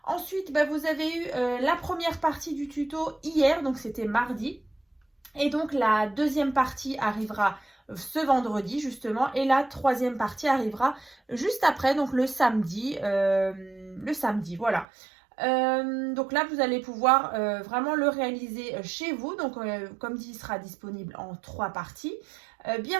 Ensuite, vous avez eu la première partie du tuto hier, donc c'était mardi. Et donc la deuxième partie arrivera ce vendredi justement. Et la troisième partie arrivera juste après, donc le samedi. Voilà. Donc là, vous allez pouvoir vraiment le réaliser chez vous. Donc, comme dit, il sera disponible en 3 parties.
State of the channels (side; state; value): left; drops out; at 14.9 s